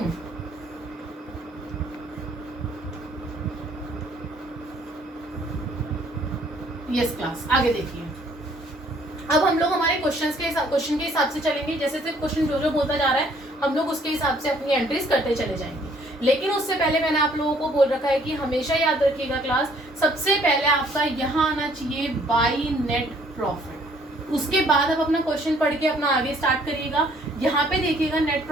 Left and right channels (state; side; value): normal; both; correlation 0.61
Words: यस क्लास, आगे देखिए। अब हम लोग हमारे क्वेश्चन के हिसाब से चलेंगे। जैसे जैसे क्वेश्चन जो बोलता जा रहा है हम लोग उसके हिसाब से अपनी एंट्रीज करते चले जाएंगे। लेकिन उससे पहले मैंने आप लोगों को बोल रखा है कि हमेशा याद रखिएगा क्लास, सबसे पहले आपका यहाँ आना चाहिए बाई नेट प्रॉफिट। उसके बाद आप अपना क्वेश्चन पढ़ के अपना आगे स्टार्ट करिएगा। यहाँ पे देखिएगा नेट